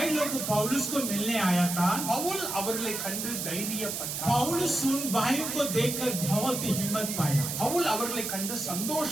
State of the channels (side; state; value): right; noise; hiss, 4 dB below the sound